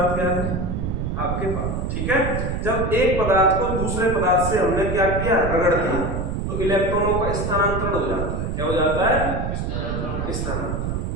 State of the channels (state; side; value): noise; right; rumble, 2 dB below the sound